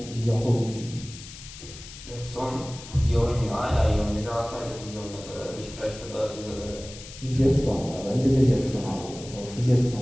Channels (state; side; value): noise; left; hiss, 15 dB below the sound